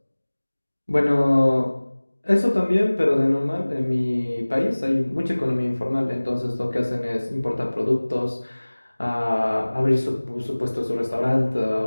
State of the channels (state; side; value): inverted; both; correlation -1.00